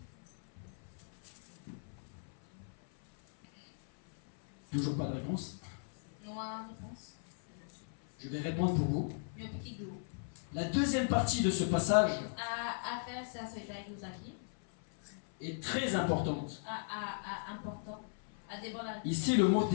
Toujours pas de réponse? Je vais répondre pour vous. La deuxième partie de ce passage est très importante. Ici, le mot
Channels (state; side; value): silent; right; 53 dB below the other